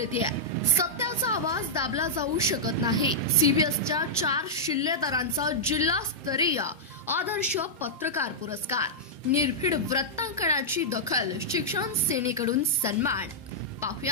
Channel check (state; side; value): normal; both; correlation -0.09